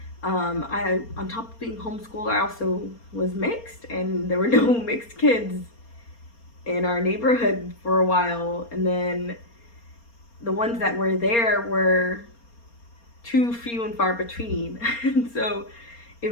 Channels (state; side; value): late; right; 4.3 ms